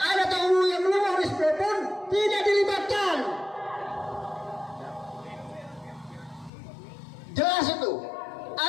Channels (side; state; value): right; drops out; at 6.5 s